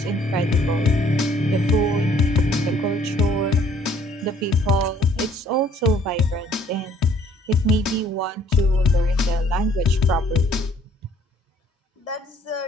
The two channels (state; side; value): normal; both; correlation 0.61